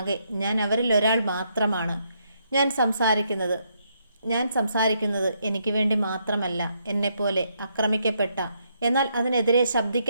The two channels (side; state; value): both; inverted; correlation -0.75